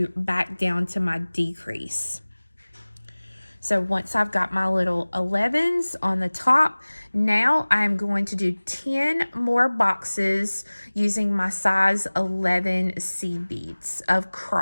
back down to my decrease. So once I've got my little 11s on the top, now I'm going to do 10 more boxes using my size 11 seed beads of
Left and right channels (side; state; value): both; inverted; correlation -1.00